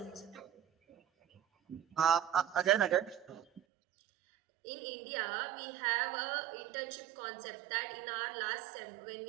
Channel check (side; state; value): left; drops out; at 3.6 s